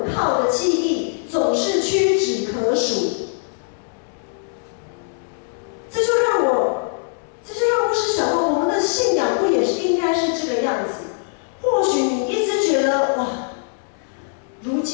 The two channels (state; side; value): silent; right; digital silence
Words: 靠的记忆总是屈指可数。这就让牧师想到，我们的信仰不也是应该是这个样子？或许你一直觉得哇，如